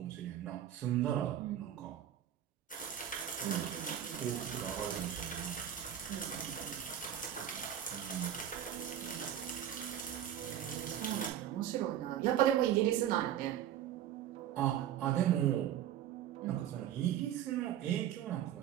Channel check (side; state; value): left; quieter; 10.7 dB